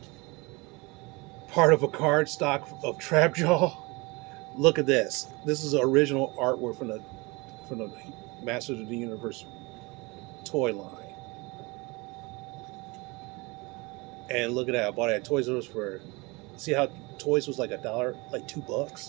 Part of a card stock of Trapjaw. Look at this. This is original artwork from the Masters of the Universe toy line. And look at that. I bought it at Toys R Us for. See how toys was like $1, like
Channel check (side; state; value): left; quieter; 25.9 dB